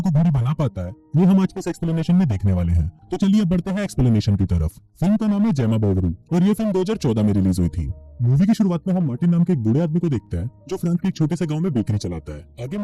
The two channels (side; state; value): both; identical; correlation 1.00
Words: घोड़ी बना पाता है, ये हम आज के इस एक्सप्लेनेशन में देखने वाले हैं। तो चलिए अब बढ़ते हैं एक्सप्लेनेशन की तरफ। फिल्म का नाम है जेमा बोवरी और ये फिल्म 2014 में रिलीज हुई थी। मूवी की शुरुआत में हम मार्टिन नाम के एक बूढ़े आदमी को देखते हैं जो फ्रांस के एक छोटे से गांव में बेकरी चलाता है। आगे